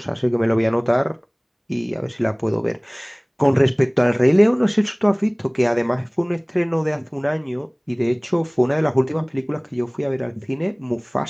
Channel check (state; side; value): identical; both; correlation 1.00